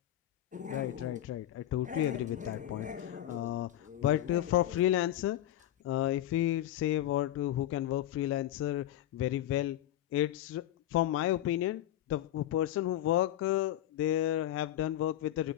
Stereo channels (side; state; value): right; quieter; 12.8 dB